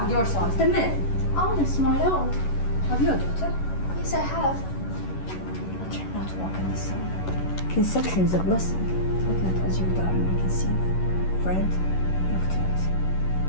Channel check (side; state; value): right; late; 11 ms